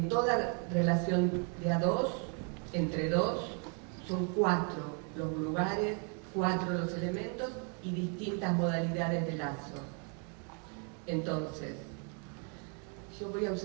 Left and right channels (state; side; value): quieter; left; 38.9 dB